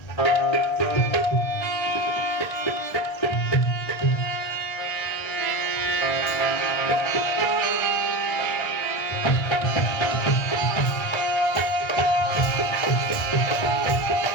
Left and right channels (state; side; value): late; right; 1.3 ms